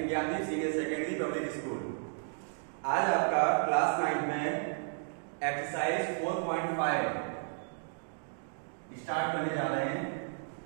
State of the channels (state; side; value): silent; left; digital silence